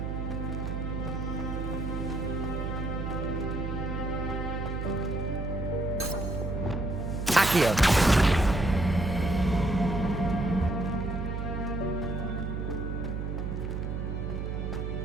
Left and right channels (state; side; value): noise; right; hum, 3 dB below the sound